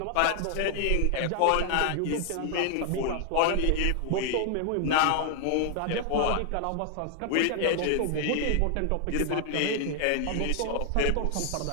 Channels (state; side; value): different; both; correlation 0.00